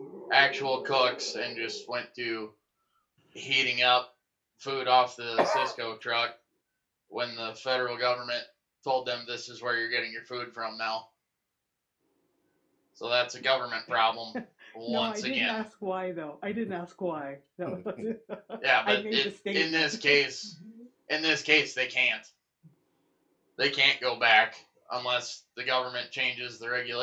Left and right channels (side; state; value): both; identical; correlation 1.00